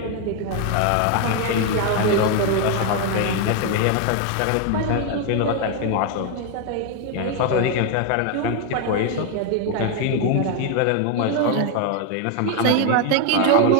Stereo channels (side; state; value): both; different; correlation 0.01